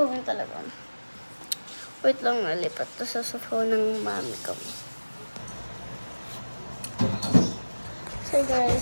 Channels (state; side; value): inverted; both; correlation -1.00